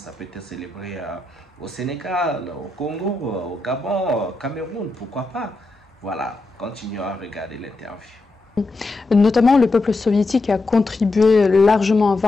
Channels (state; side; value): quieter; right; 3.1 dB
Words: peut être célébré au Sénégal, au Congo, au Gabon, au Cameroun, pourquoi pas. Voilà, continuons à regarder l'interview. Notamment, le peuple soviétique a contribué largement à